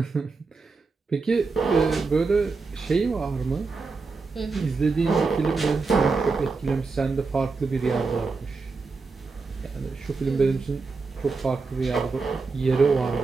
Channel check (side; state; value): left; quieter; 4.2 dB